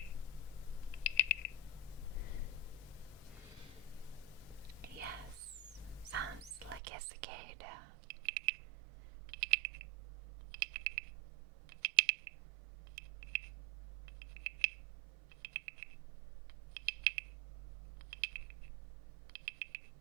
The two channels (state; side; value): drops out; left; at 6.8 s